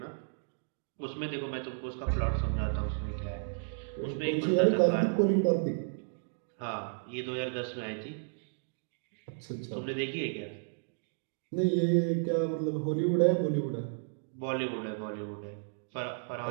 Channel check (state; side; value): silent; left; digital silence